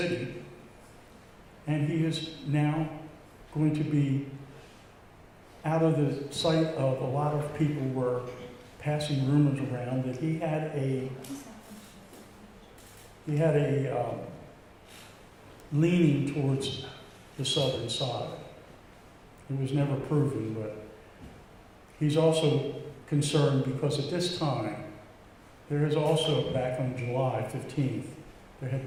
and he is now going to be out of the sight of a lot of people. Were passing rumors around that he had a leaning towards the southern side. It was never proven, but he's also concerned because at this time, there is also, back on July 15th, there had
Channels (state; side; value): identical; both; correlation 1.00